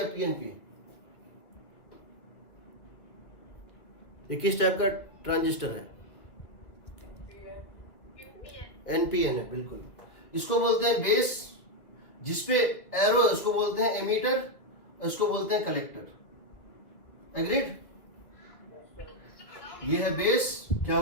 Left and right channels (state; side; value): late; right; 1.4 ms